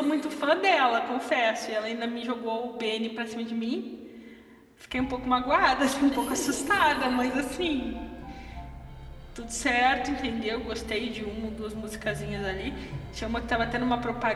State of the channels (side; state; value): both; identical; correlation 1.00